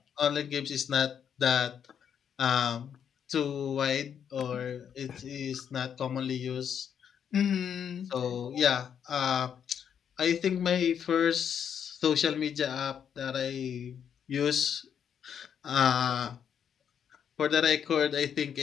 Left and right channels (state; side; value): quieter; right; 8.2 dB